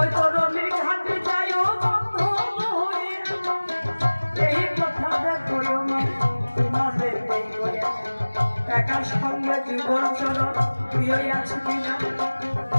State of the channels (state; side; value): inverted; both; correlation -1.00